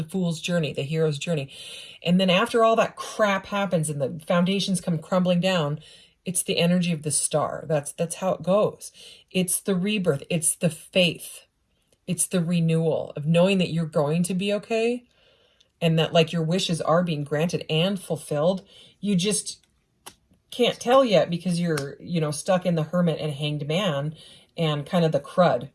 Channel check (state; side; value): identical; both; correlation 1.00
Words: fool's journey, the hero's journey. And then after all that crap happens and the foundations come crumbling down, it's the energy of the Star. That's how it goes. It's the rebirth. It's the faith. It's the renewal of knowing that you're going to be okay and that like your wishes are being granted and fulfilled. You just can't tell yet because you're, stuck in the Hermit and Hanged Man and kind of the crud.